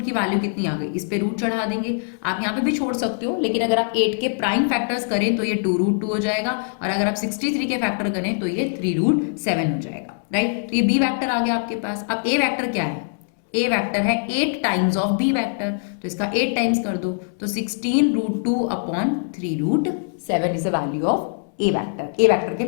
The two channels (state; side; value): silent; right; 63 dB below the other